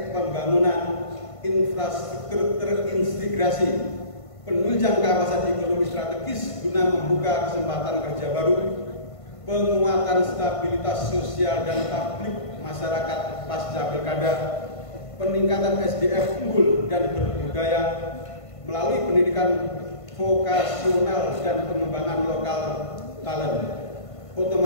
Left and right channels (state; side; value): late; right; 1.5 ms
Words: pembangunan infrastruktur terintegrasi, penunjang kawasan ekonomi strategis guna membuka kesempatan kerja baru, penguatan stabilitas sosial dan publik masyarakat pasca pilkada, peningkatan SDM unggul dan berbudaya melalui pendidikan vokasional dan pengembangan lokal talent,